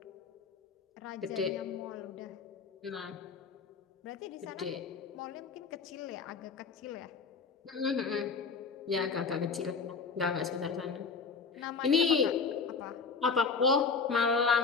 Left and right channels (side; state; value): right; quieter; 5.1 dB